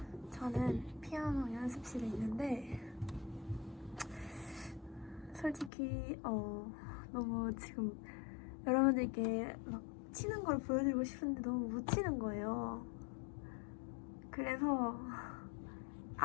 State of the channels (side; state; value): right; drops out; at 5.7 s